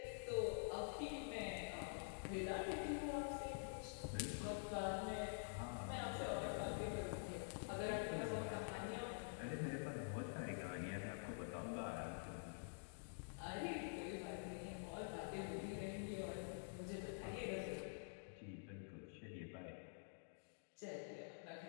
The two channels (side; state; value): right; silent; digital silence